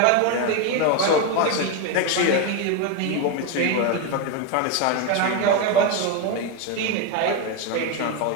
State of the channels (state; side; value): different; both; correlation 0.03